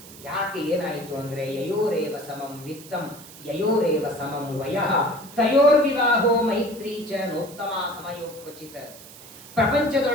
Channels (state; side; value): noise; right; hiss, 18 dB below the sound